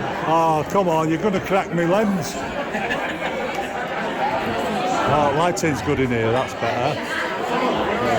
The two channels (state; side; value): identical; both; correlation 1.00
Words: oh come on, you're going to crack me lens. Oh, lighting's good in here, that's better.